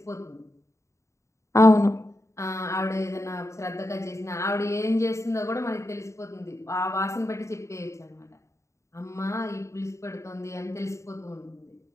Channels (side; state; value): right; late; 0.14 ms